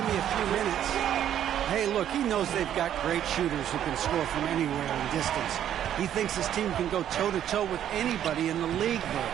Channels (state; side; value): quieter; left; 10.5 dB